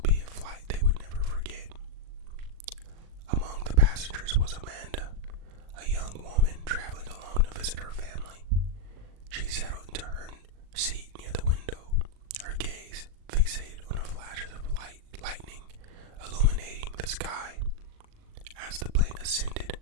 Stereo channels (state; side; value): late; left; 39 ms